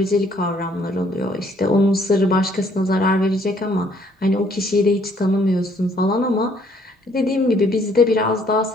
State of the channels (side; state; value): both; normal; correlation 0.64